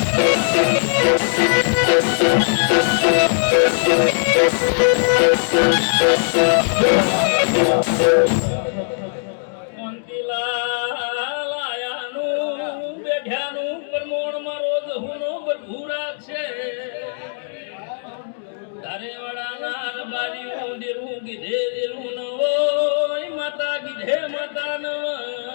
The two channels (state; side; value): silent; right; digital silence